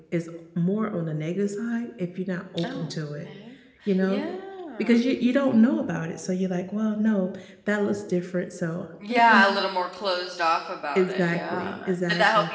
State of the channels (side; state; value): both; identical; correlation 1.00